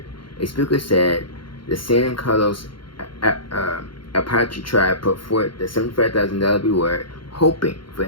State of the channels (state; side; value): late; right; 0.73 ms